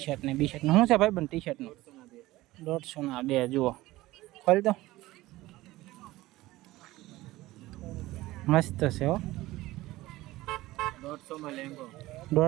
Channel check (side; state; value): left; quieter; 17.9 dB